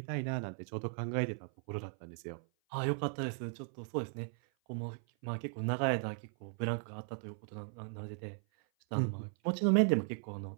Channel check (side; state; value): left; silent; 53 dB below the other